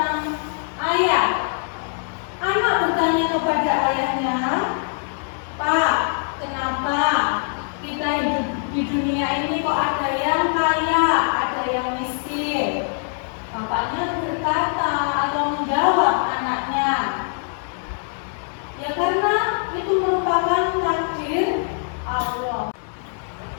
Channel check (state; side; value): silent; right; 55 dB below the other